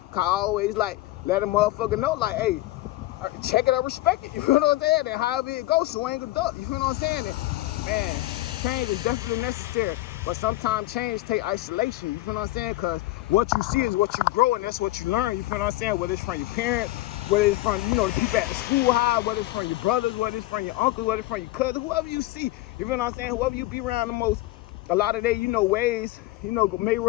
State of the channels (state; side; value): quieter; right; 17.7 dB